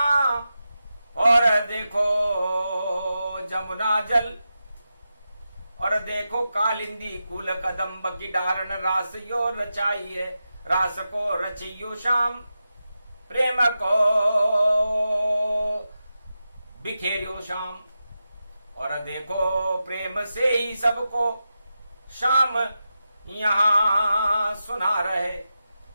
और देखो जमुना जल, और देखो कालिंदी कुल कदम्ब की डारण रास यो रचाई है। रास को रचियो श्याम, प्रेम को बिखेरियो श्याम। और देखो प्रेम से ही सबको श्याम यहां सुना रहे।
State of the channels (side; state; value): both; inverted; correlation -0.90